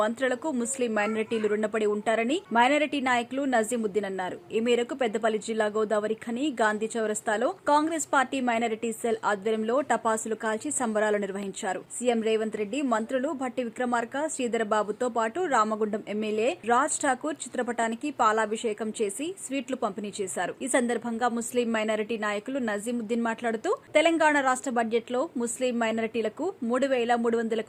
మంత్రులకు ముస్లిం మైనారిటీలు రుణపడి ఉంటారని మైనారిటీ నాయకులు నజీముద్దీన్ అన్నారు. ఈ మేరకు పెద్దపల్లి జిల్లా గోదావరి ఖని గాంధీ చౌరస్తాలో కాంగ్రెస్ పార్టీ మైనారిటీ సెల్ ఆధ్వర్యంలో టపాసులు కాల్చి సంబరాలు నిర్వహించారు. సీఎం రేవంత్ రెడ్డి, మంత్రులు భట్టి విక్రమార్క, శ్రీధర్ బాబుతో పాటు రామగుండం ఎమ్మెల్యే రాజ్ ఠాకూర్ చిత్రపటానికి పాలాభిషేకం చేసి స్వీట్లు పంపిణీ చేశారు. ఈ సందర్భంగా ముస్లిం మైనారిటీ నాయకులు నజీముద్దీన్ మాట్లాడుతూ తెలంగాణ రాష్ట్ర బడ్జెట్ లో ముస్లిం మైనారిటీలకు 3,300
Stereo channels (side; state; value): both; identical; correlation 1.00